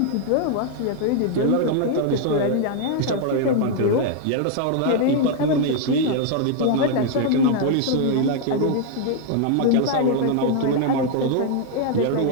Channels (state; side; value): different; both; correlation 0.00